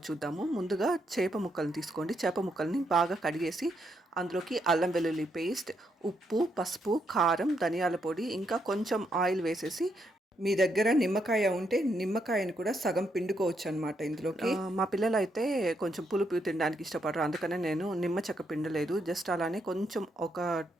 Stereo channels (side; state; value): both; normal; correlation 0.78